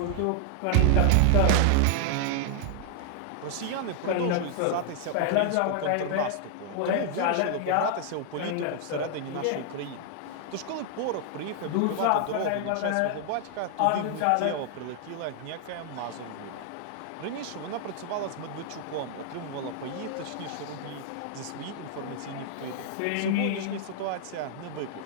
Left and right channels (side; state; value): both; different; correlation 0.00